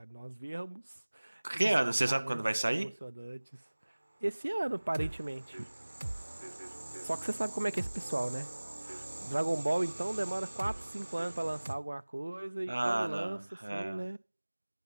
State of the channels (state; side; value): inverted; both; correlation -1.00